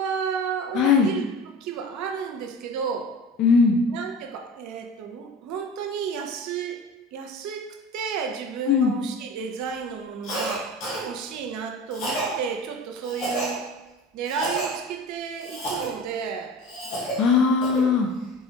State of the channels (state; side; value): normal; both; correlation 0.36